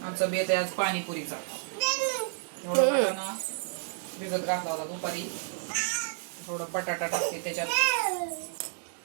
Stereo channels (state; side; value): silent; left; digital silence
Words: आमचा बेत आहे आज पाणीपुरीचा. एवढा ना भिजत घातला होता दुपारी. थोडा बटाटा टाकते त्याच्यात.